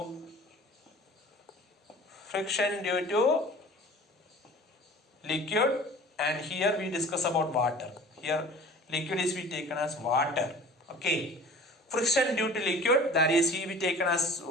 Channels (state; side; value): normal; both; correlation 0.44